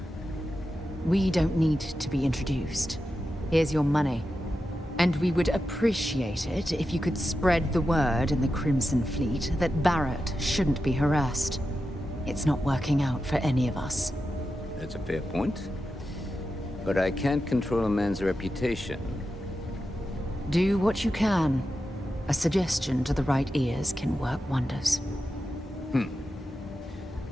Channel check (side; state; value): both; normal; correlation 0.90